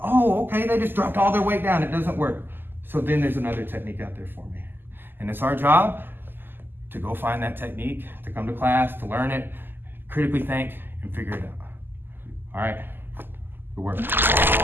Oh, okay, they just dropped all their weight down. It doesn't work. So then there's another technique out there for me. And it's our job to go find that technique, to come to class, to learn it, critically think, and figure it out. All right, good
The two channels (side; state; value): left; late; 0.095 ms